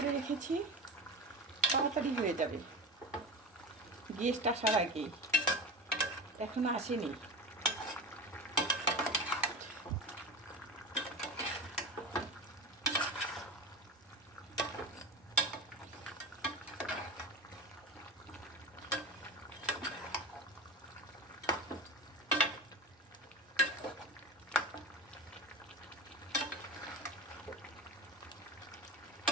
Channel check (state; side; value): normal; both; correlation 0.28